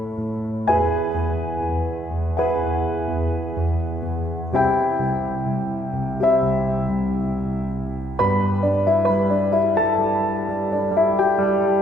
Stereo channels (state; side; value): normal; both; correlation 0.72